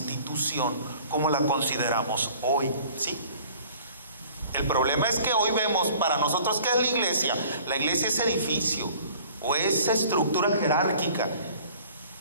como la consideramos hoy, ¿sí? El problema es que hoy vemos para nosotros ¿qué es la iglesia? La iglesia es edificio o es estructura jerárquica.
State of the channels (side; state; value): both; inverted; correlation -0.50